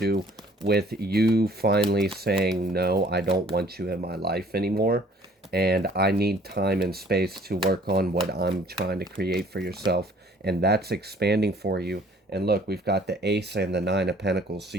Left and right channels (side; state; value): both; normal; correlation 0.56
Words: with you finally saying, no, I don't want you in my life anymore, and I need time and space to work on what I'm trying to create for yourself, and that's expanding for you. And look, we've got the Ace and the Nine of Pentacles. So